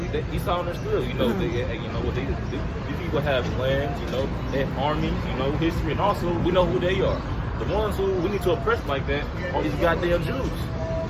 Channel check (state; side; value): identical; both; correlation 1.00